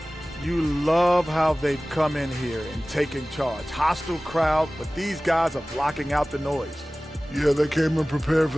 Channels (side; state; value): both; normal; correlation 0.98